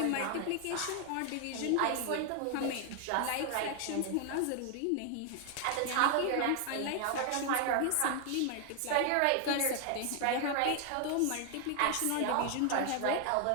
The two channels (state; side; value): different; both; correlation 0.00